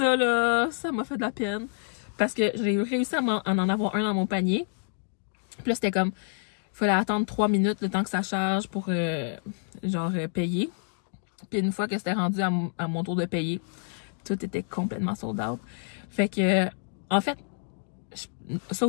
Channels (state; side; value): silent; right; digital silence